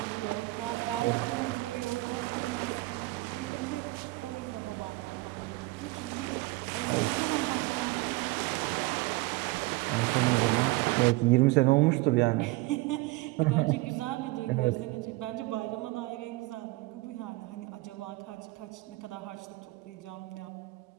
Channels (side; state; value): left; quieter; 21.8 dB